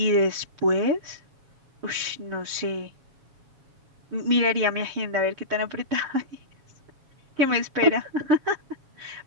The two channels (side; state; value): left; late; 7.2 ms